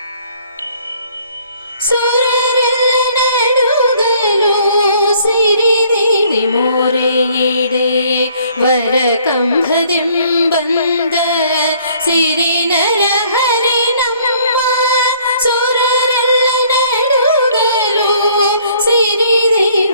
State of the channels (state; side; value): inverted; both; correlation -0.60